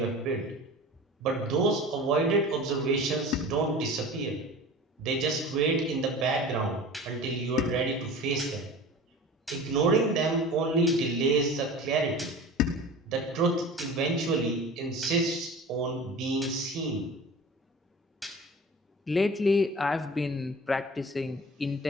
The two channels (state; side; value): normal; both; correlation 0.38